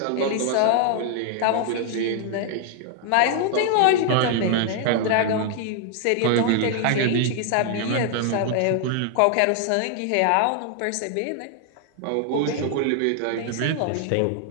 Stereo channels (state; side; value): different; both; correlation 0.00